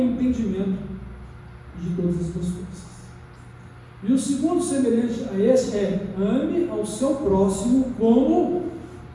entendimento e de todas as tuas forças. E o segundo semelhante a esse é: ame ao seu próximo como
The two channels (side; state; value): both; identical; correlation 1.00